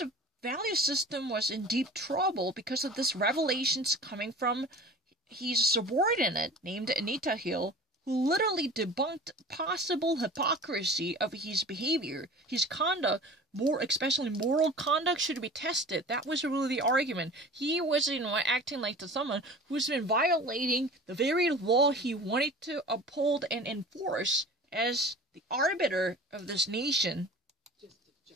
value system was in deep trouble because of this revelations coming from his subordinate named Anita Hill, who literally debunked possible hypocrisy of his behavior. His conduct, especially moral conduct, should be tested. That was really the argument. He was, acting like someone who's been violating the very law he wanted to uphold and enforce as the arbiter of this nation. Just a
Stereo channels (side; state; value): both; normal; correlation 0.40